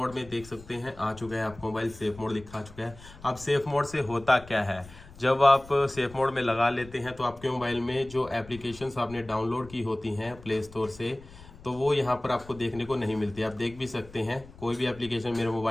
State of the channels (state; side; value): noise; left; rumble, 19 dB below the sound